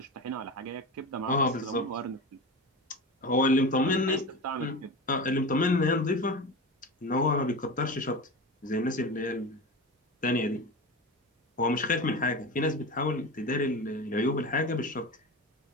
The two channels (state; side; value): normal; both; correlation 0.26